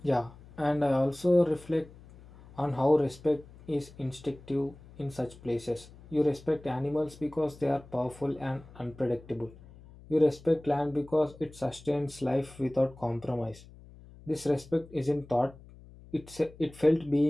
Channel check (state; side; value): noise; left; hum, 21 dB below the sound